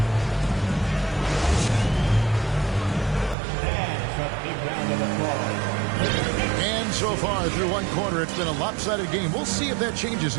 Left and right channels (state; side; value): drops out; left; at 3.4 s